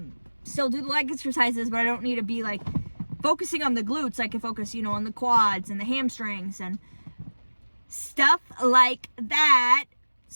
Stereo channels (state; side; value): inverted; both; correlation -1.00